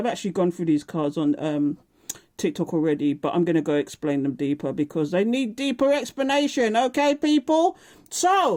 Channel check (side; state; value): both; identical; correlation 1.00